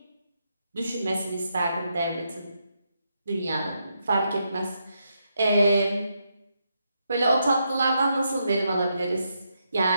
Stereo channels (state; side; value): inverted; both; correlation -0.81